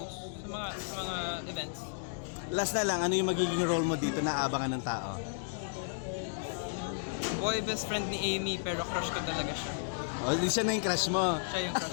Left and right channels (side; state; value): right; silent; digital silence